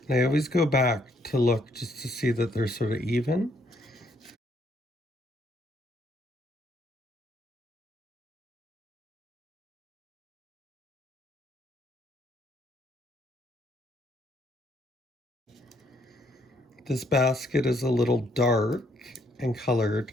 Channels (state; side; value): normal; both; correlation 0.70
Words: And I always go back to look just to see that they're sort of even. This basket is a little dark and colored,